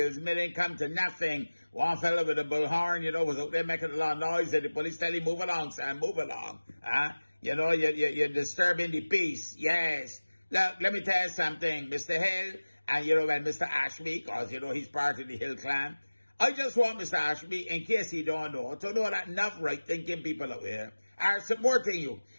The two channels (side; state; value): both; inverted; correlation -1.00